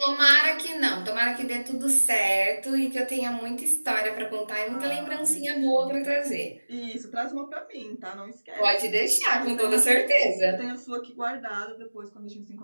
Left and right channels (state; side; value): inverted; both; correlation -1.00